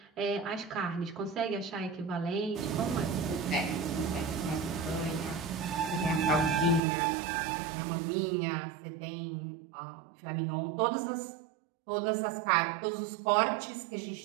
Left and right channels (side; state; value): left; drops out; at 6.8 s